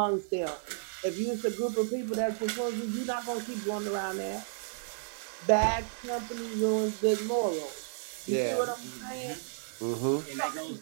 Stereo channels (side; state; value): left; silent; digital silence